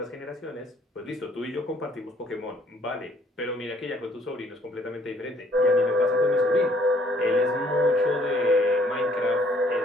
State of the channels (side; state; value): both; normal; correlation 0.62